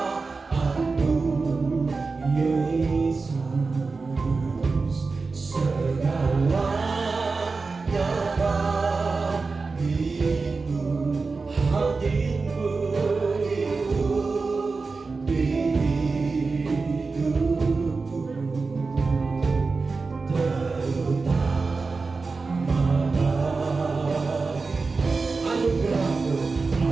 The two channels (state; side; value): quieter; left; 4.2 dB